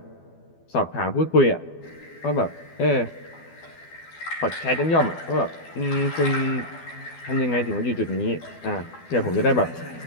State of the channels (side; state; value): right; late; 12 ms